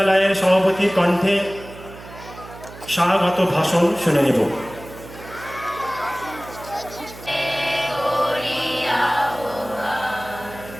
সভাপতির কণ্ঠে স্বাগত ভাষণ শুনে নেব।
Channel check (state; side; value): noise; right; hum, 16 dB below the sound